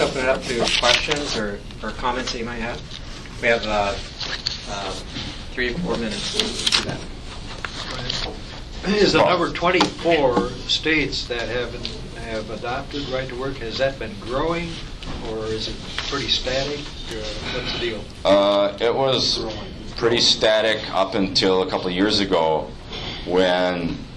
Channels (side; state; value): both; identical; correlation 1.00